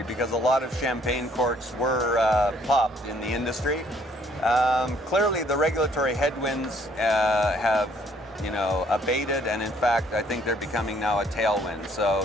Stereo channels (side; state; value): both; normal; correlation 0.63